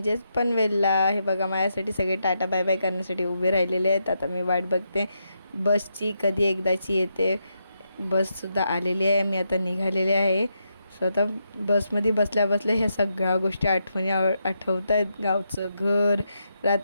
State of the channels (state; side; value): inverted; both; correlation -0.83